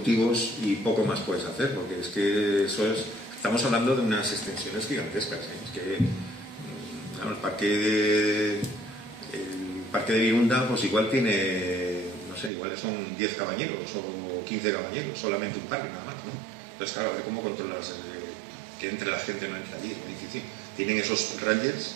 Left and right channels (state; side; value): drops out; left; at 12.5 s